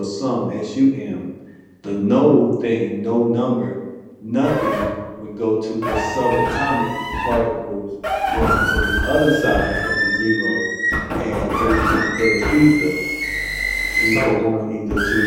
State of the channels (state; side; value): identical; both; correlation 1.00